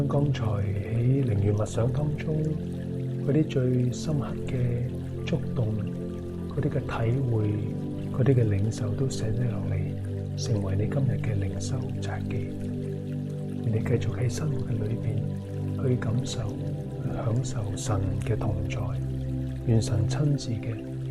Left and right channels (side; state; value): both; identical; correlation 1.00